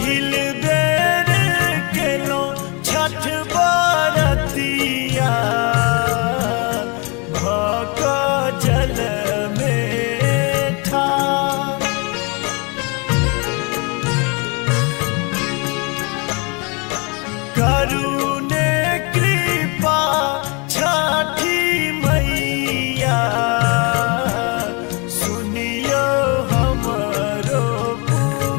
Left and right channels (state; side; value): quieter; right; 31.1 dB